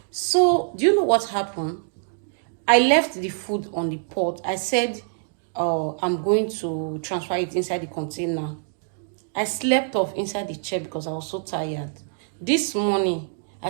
So do you know what happened? I left the food on the pot. I said I'm going to transfer it inside the container. I slept off inside the chair because I was so tired. This morning,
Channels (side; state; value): left; silent; digital silence